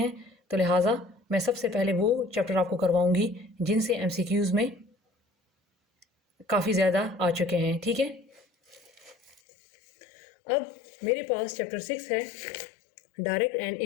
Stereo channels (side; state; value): right; drops out; at 9.4 s